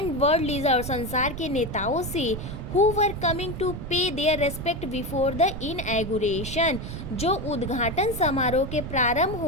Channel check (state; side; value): noise; right; rumble, 8 dB below the sound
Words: वर्ल्ड लीडर, संसार के नेताओं से, हु वर कमिंग टू पे देयर रेस्पेक्ट बिफोर द इनएगुरेशन, जो उद्घाटन समारोह के प्रारंभ